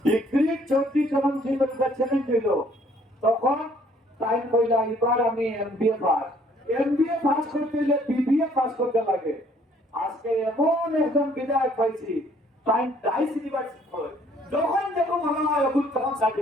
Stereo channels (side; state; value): both; normal; correlation 0.61